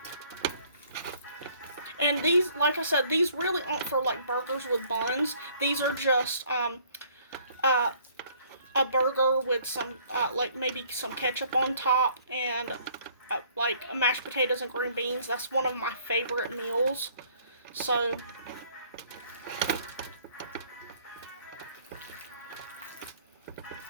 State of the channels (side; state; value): both; inverted; correlation -0.59